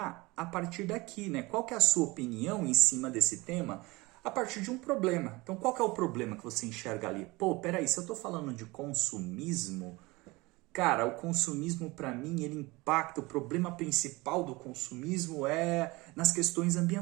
a partir daqui, né? Qual que é a sua opinião em cima desse tema a partir de um problema? Então, qual que é o problema que você enxerga ali? Pô, peraí, se eu estou falando de consumismo, cara, o consumismo para mim, ele impacta, o problema principal do consumismo é nas questões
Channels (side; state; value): left; quieter; 22.9 dB